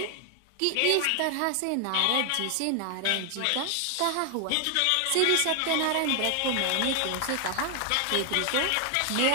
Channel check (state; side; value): different; both; correlation 0.00